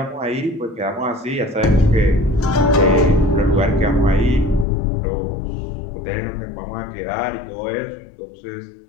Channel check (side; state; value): right; drops out; at 4.7 s